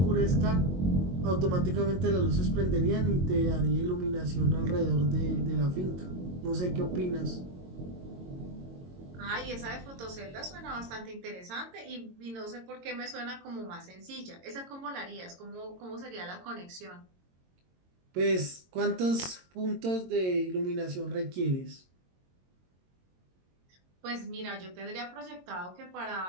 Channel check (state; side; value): late; left; 22 ms